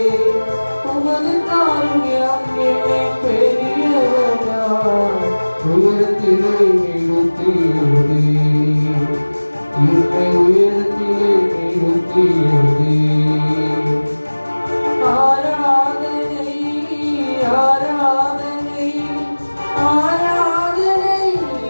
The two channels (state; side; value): inverted; both; correlation -1.00